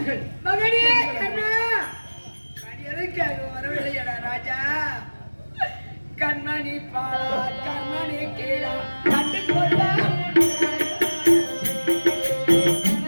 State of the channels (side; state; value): both; inverted; correlation -1.00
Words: மகனே கண்ணா, எதற்காக வரவில்லையடா ராஜா? கண்மணி பாலா, கண்மணி கீழா கண்டு கொள்ளா.